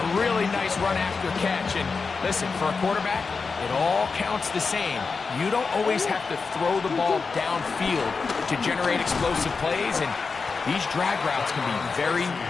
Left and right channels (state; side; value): quieter; right; 4.7 dB